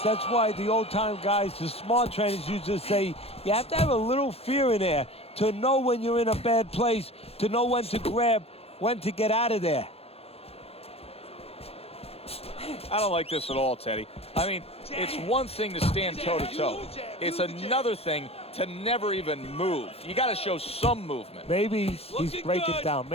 That's why the old-time guys, the smart trainers, used to say you have to have a little fear in there to know when you're in a bad place, to know when to grab, when to get out of there. I don't like this at all, Teddy. I mean, it's one thing to stand toe-to-toe. It's another thing to never even move. You got to show some movement. Maybe he's breaking down.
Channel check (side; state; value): right; late; 0.29 ms